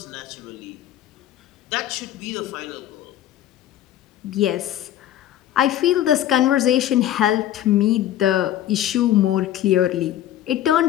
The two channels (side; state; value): right; quieter; 12.3 dB